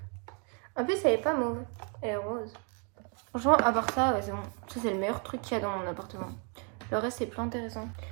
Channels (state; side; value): quieter; left; 38.1 dB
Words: En plus, elle est pas mauve, elle est rose. Franchement, à part ça, ouais, c'est bon. Ça, c'est le meilleur truc qu'il y a dans mon appartement. Le reste, c'est plus intéressant.